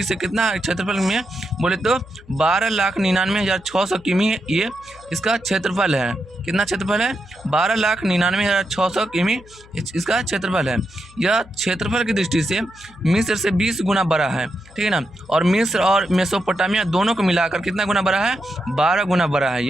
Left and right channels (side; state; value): left; noise; hum, 24 dB below the sound